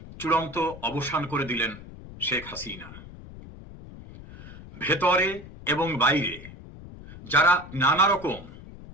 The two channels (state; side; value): noise; left; rumble, 16 dB below the sound